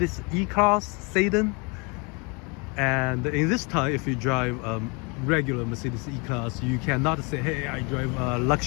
E-Class sedan, and in this time, if you drive a regular Mercedes E-Class, you cannot say, hey, I drive a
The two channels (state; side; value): quieter; right; 30.8 dB